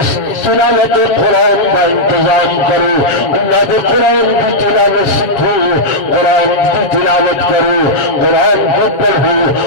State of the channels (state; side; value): late; right; 7.2 ms